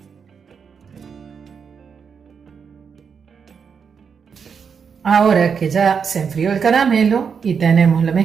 Ahora que ya se enfrió el caramelo y tenemos la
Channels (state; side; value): quieter; left; 6.4 dB